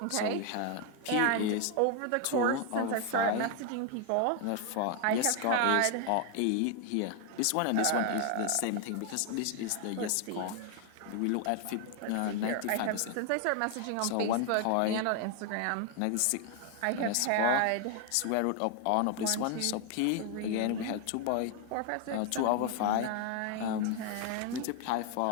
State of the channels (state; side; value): different; both; correlation 0.00